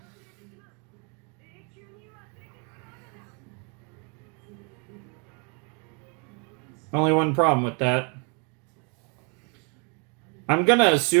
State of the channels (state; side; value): quieter; left; 35.2 dB